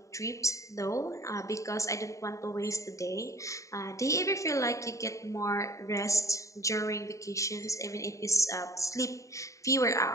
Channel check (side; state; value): right; late; 0.15 ms